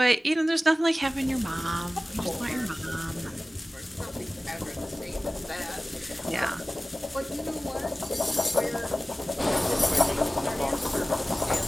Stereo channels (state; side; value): normal; both; correlation 0.96